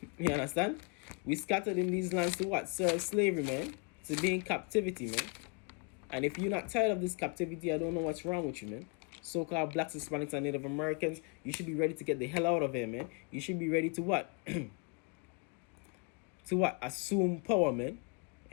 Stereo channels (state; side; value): quieter; right; 34.3 dB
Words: You understand? We scattered in these lands to what? Serve slavery, man. To be in captivity, man. And if you're not tired of this captivity, I don't know what's wrong with you, man. So-called blacks, Hispanics, and Native Americans, you should be ready to get the hell out of here, man. You should be ready to what? To what? Assume power, man.